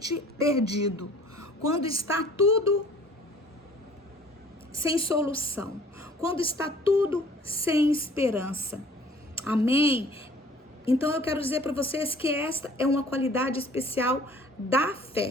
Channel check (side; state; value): both; normal; correlation 0.52